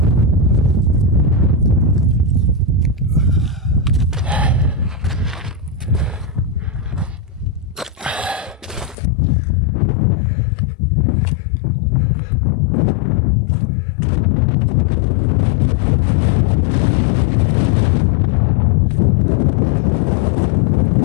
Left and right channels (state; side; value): drops out; right; at 9.0 s